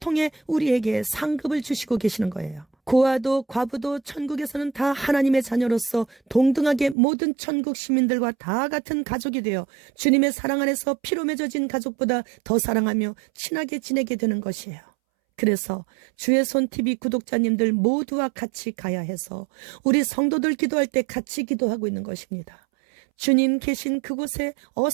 우리에게 상급을 주시고 계시는 거예요. 고아도 과부도 천국에서는 다 하나님의 자녀로서 동등하게 모든 천국 시민들과 다 같은 가족이 되어 주님의 사랑 안에서 피로 맺어진 가족보다 더 사랑하며 친하게 지내게 되는 것이에요. 그래서 주의 손 TV 구독자님들 모두와 같이 가야 해서 우리 성도들 기도할 때 같이 기도하고 있는 것입니다. 주님 계신 그곳에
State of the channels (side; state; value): left; drops out; at 7.0 s